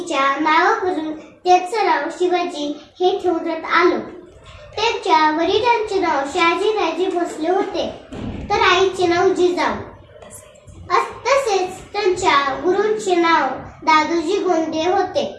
नावावरून त्याचं नाव शिवाजी हे ठेवण्यात आलं. त्यांच्या वडिलांचे नाव शहाजीराजे भोसले होते, तर आईचे नाव जिजाऊ. तसेच त्यांच्या गुरूंचे नाव दादोजी गोंडे होते.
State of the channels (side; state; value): both; identical; correlation 1.00